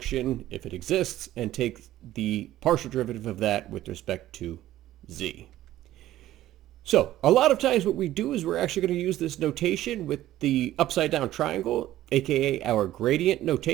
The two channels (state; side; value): quieter; left; 14.1 dB